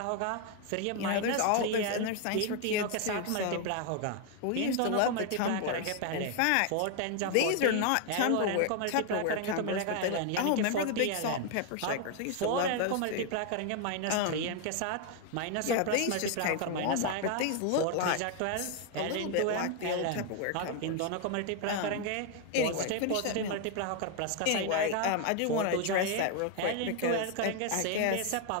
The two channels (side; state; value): both; different; correlation 0.01